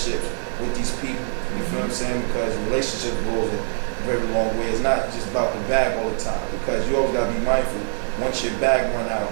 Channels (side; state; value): left; silent; digital silence